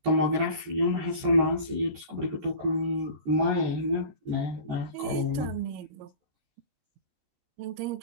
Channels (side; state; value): left; late; 14 ms